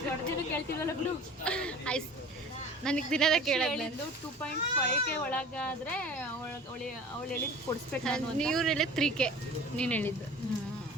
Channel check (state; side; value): normal; both; correlation 0.42